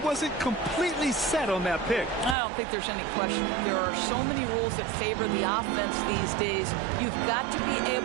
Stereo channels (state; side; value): drops out; left; at 2.4 s